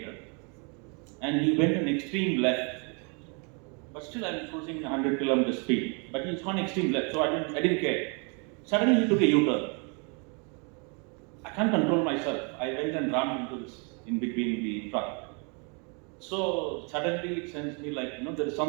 and he went an extreme left. But still, I'm cruising 100 kilometer speed. But he's gone extreme left, so I didn't care. Suddenly, he took a U-turn. I can't control myself. I went and rammed into this in between the truck. So suddenly, it sends me like, there is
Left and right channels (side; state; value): left; quieter; 35.4 dB